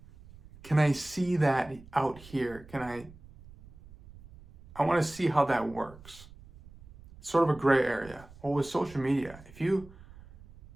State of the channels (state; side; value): noise; right; rumble, 21 dB below the sound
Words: Can I see that out here? I want to see how that works. It's sort of a gray area. Well, with social media, if you